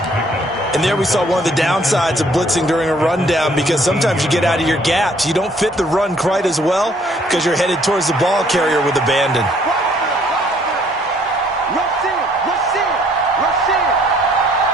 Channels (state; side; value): normal; both; correlation 0.62